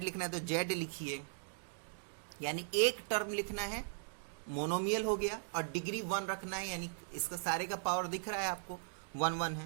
लिखना है तो z लिखिए, यानी एक टर्म लिखना है मोनोमियल हो गया, और डिग्री 1 रखना है, यानी इसका सारे का पावर दिख रहा है आपको 1 1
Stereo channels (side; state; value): left; silent; digital silence